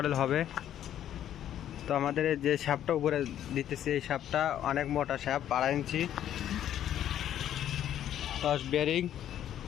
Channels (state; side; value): quieter; right; 11.0 dB